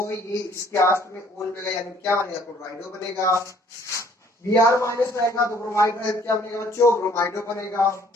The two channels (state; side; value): normal; both; correlation 0.60